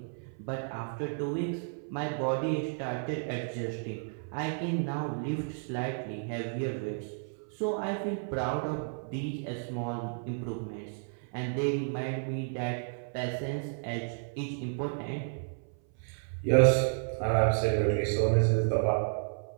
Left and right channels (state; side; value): silent; left; 56 dB below the other